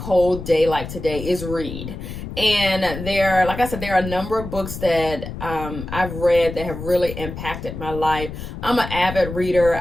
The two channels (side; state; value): left; noise; rumble, 9 dB below the sound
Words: day like today is read. And like I said, there are a number of books that I've read that have really impacted my life. I'm an avid reader.